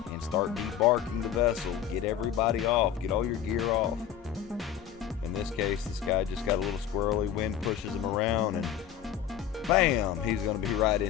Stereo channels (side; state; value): right; quieter; 9.5 dB